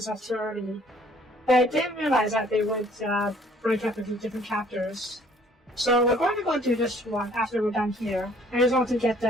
too early. But I didn't realize that they would break up into different chapters. So we're going to go do this one after we're done here. I just want to get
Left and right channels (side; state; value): both; normal; correlation 0.59